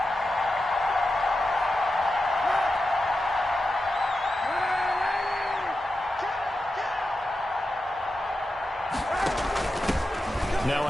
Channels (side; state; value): both; normal; correlation 0.90